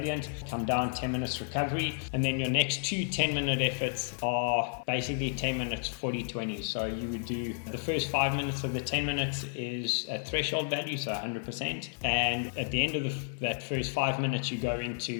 Come down, 10 minutes recovery, and then your next 2 10-minute efforts are basically 10 minutes 40-20. So you would do the first 5 minutes of the 10 minutes is a threshold value, so 100%, and at the end of that first 5 minutes you go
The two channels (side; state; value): right; silent; 57 dB below the other